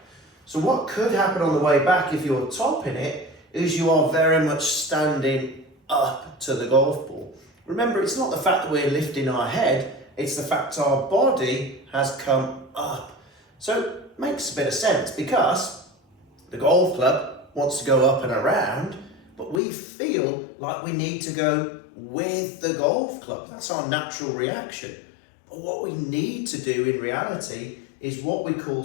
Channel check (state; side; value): drops out; right; at 19.6 s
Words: So what could happen on the way back if you're topping it is you are very much standing up to the golf ball. Remember, it's not the fact that we're lifting our head, it's the fact our body has come up. So it makes a bit of sense because the golf club wants to go up and around, but we feel like we need to go with the golf club. That's our natural reaction. But what we need to do in reality is what we call